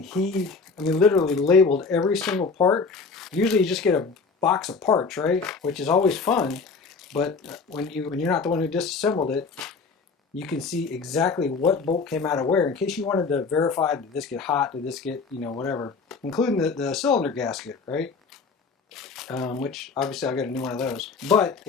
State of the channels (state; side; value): quieter; right; 4.7 dB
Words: I mean, literally labeled every single part. Usually you just get a box of parts, right? Which is always fun, but when you're not the one who disassembled it, you can see exactly what bolt came out of where, in case you wanted to verify, did this get hot, did this get, whatever, including the cylinder gasket, right? Which obviously I got a new one of those. But